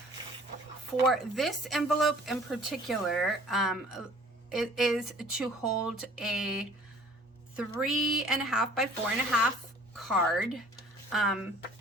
for this envelope in particular, it is to hold a 3.5 by 4.5 card.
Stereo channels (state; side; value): normal; both; correlation 0.52